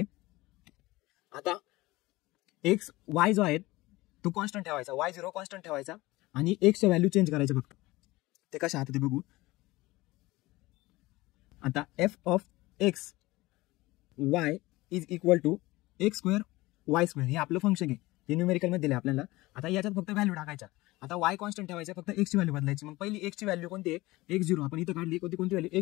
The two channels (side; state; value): right; quieter; 19.9 dB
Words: आता एक्स वाय जो आहे तो कॉन्स्टंट ठेवायचा, y0 कॉन्स्टंट ठेवायचा आणि एक्सच्या व्हॅल्यू चेंज करायचे फक्त. ते कसे आता ते बघू. आता f of x y is equal to x square y square, हे आपलं फंक्शन आहे, हे न्यूमेरिकल मध्ये दिले आपल्याला. आता याच्यात फक्त व्हॅल्यू टाकायच्या. आता y कॉन्स्टंट ठेवायचा, फक्त एक्सची व्हॅल्यू बदलायची. मग पहिली एक्सची व्हॅल्यू कोणती आहे, x0. आपण इथं काढली कोणती व्हॅल्यू,